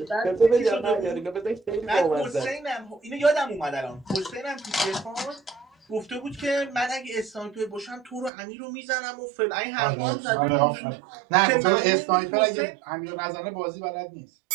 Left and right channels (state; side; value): drops out; left; at 8.3 s